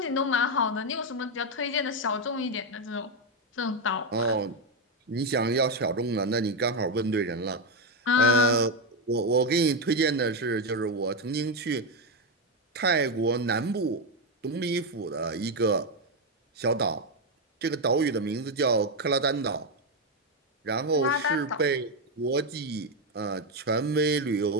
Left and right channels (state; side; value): normal; both; correlation 0.07